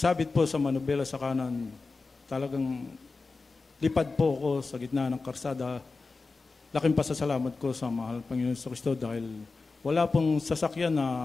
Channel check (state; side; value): quieter; right; 4.0 dB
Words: po sa manubela sa kanan, talagang lipad po ako sa gitna ng karsada. Laking pasasalamat ko sa mahal Panginoon sa Kristo dahil wala pong sasakyan na